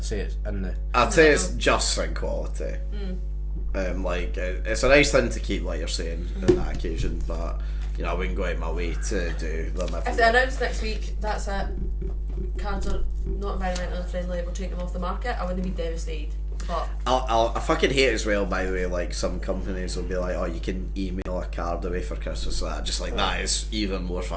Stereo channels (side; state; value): both; identical; correlation 1.00